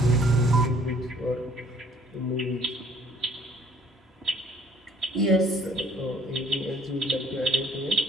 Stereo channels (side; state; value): both; normal; correlation 0.58